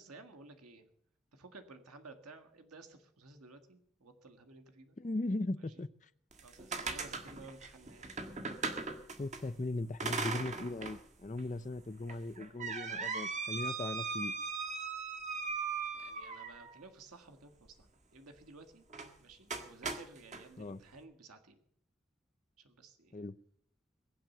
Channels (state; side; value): normal; both; correlation 0.43